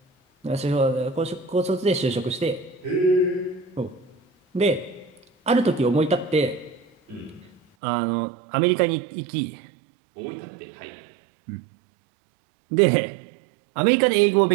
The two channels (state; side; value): drops out; left; at 7.6 s